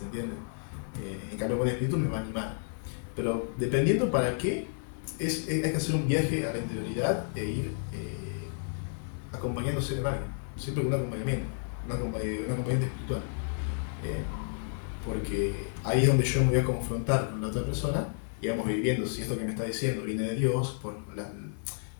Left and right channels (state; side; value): silent; right; 57 dB below the other